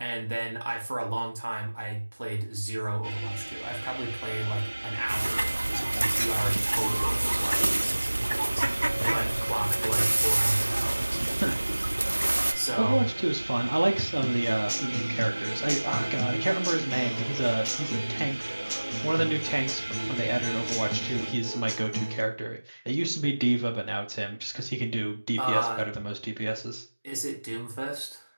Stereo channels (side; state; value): both; inverted; correlation -1.00